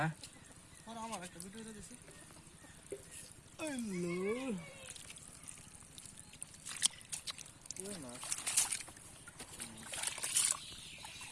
আর আমার একটা ভিডিও দিছি হ্যালো ওই না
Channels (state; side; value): identical; both; correlation 1.00